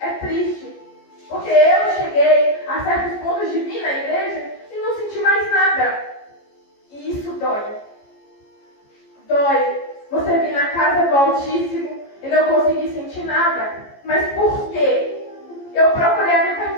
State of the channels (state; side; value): late; right; 14 ms